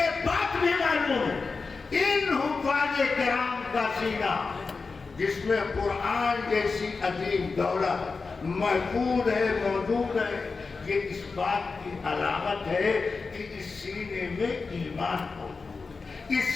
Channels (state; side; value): quieter; right; 4.4 dB